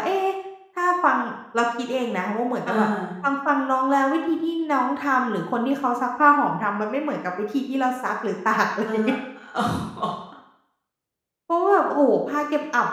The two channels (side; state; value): both; identical; correlation 1.00